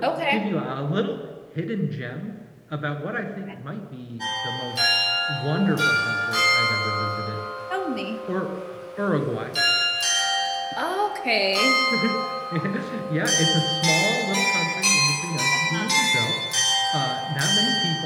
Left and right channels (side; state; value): both; identical; correlation 1.00